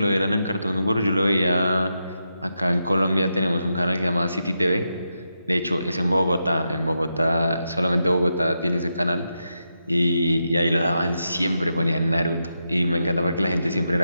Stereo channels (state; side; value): inverted; both; correlation -0.86